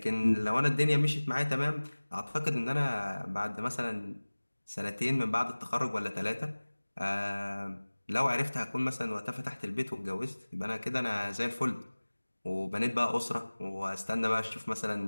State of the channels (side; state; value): both; inverted; correlation -1.00